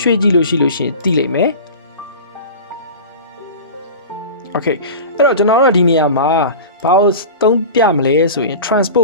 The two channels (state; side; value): inverted; both; correlation -0.32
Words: ရွှေ့ကြည့်လို့ရှိရင်သိလိမ့်မယ် okay အဲ့တော့ကျွန်တော်တို့ဒီနေရာမှာဘာလို့သုံးပြမလဲဆိုရင်